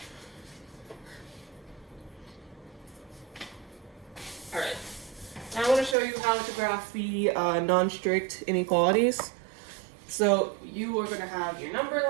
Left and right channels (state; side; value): drops out; left; at 6.0 s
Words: Alright, now I want to show you how to graph the non-strict inequalities. So you are going to have your number